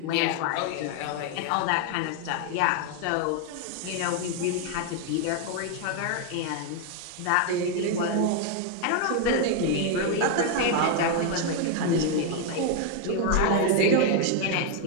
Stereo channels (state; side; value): different; both; correlation 0.01